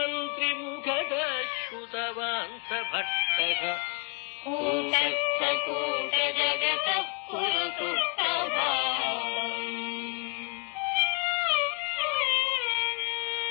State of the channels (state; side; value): quieter; right; 35.2 dB